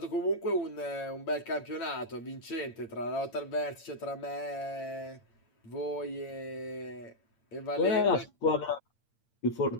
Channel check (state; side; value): late; right; 8.7 ms